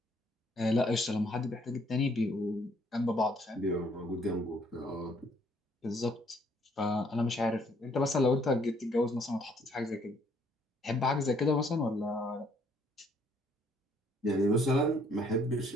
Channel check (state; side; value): normal; both; correlation 0.65